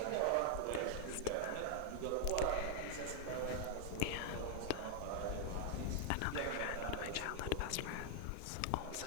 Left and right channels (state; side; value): different; both; correlation 0.00